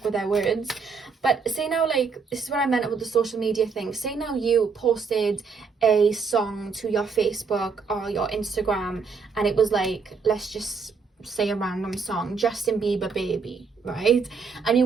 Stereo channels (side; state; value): left; quieter; 5.2 dB